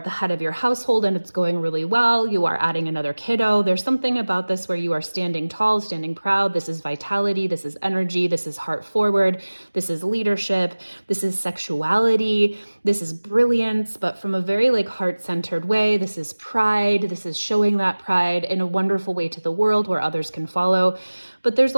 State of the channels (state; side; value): inverted; both; correlation -1.00